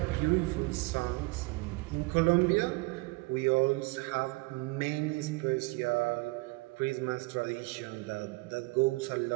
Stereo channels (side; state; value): left; quieter; 24.7 dB